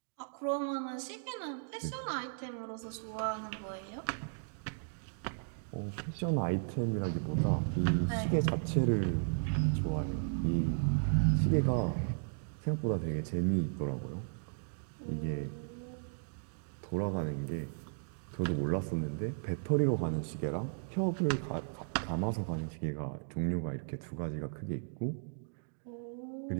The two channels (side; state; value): left; silent; digital silence